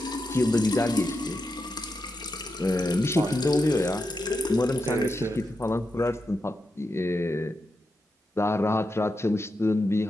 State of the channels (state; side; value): normal; both; correlation 0.87